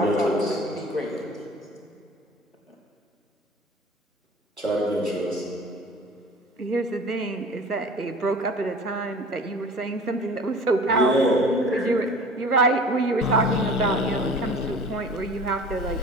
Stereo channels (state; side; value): normal; both; correlation 0.43